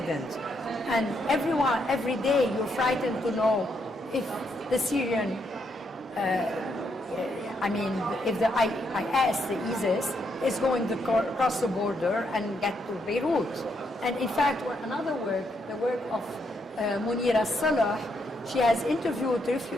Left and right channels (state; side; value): normal; both; correlation 0.77